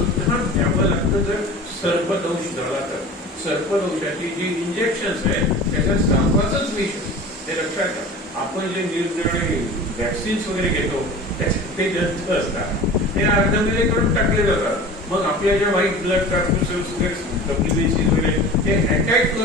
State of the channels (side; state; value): both; normal; correlation 0.38